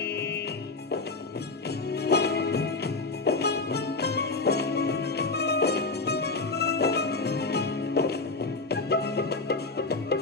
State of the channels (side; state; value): right; quieter; 3.7 dB